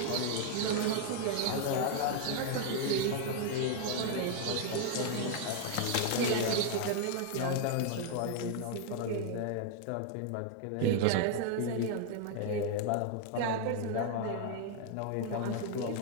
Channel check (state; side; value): different; both; correlation 0.00